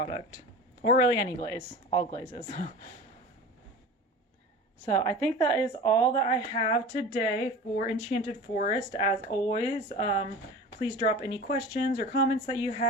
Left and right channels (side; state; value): both; normal; correlation 0.35